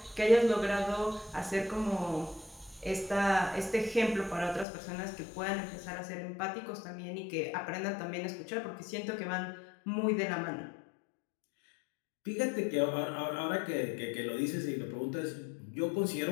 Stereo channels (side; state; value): right; drops out; at 4.7 s